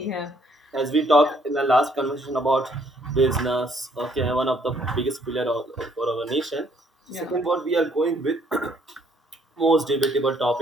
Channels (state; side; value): normal; both; correlation 0.66